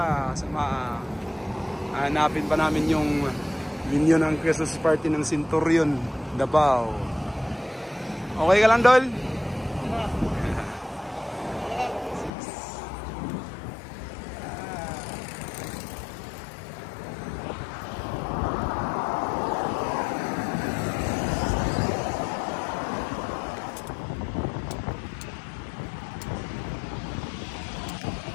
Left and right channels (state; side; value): drops out; right; at 12.3 s